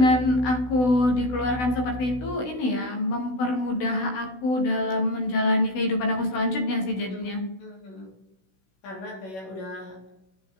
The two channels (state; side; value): late; right; 16 ms